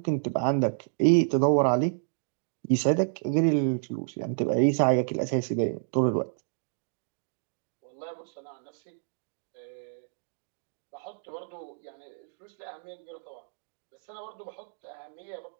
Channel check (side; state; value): left; silent; digital silence